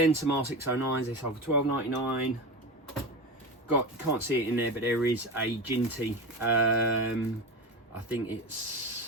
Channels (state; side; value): normal; both; correlation 0.24